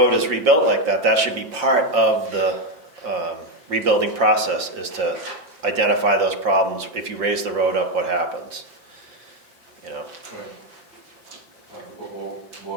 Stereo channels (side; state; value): left; late; 5.8 ms